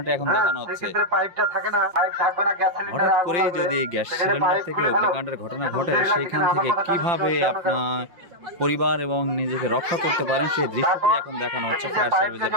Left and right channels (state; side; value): late; left; 5.8 ms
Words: এখন দেখানো হচ্ছে। হঠাৎ করেই যদি গ্যাস সিলিন্ডার থেকে অগ্নিকাণ্ডের ঘটনা ঘটে সেইখান থেকে কিভাবে আপনার পরিবার এবং নিজেকে রক্ষা করতে পারেন সেই দৃশ্যটি এখন দেখানো হচ্ছে ফায়ার সার্ভিসের